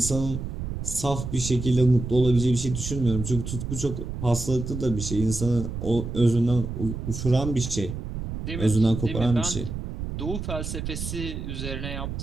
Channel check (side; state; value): right; noise; rumble, 6 dB below the sound